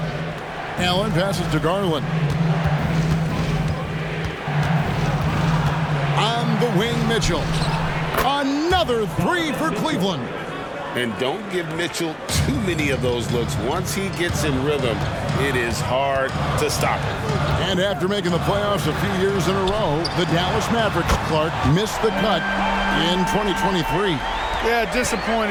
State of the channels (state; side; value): identical; both; correlation 1.00